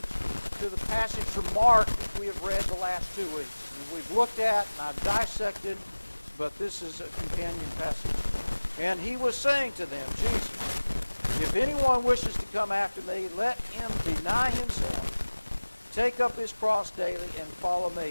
to the passage from Mark that we have read the last 2 weeks. And we've looked at and I've dissected, but this is a companion passage. And he was saying to them, Jesus, if anyone wishes to come after me, let him deny himself, take up his cross daily, and follow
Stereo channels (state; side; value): inverted; both; correlation -1.00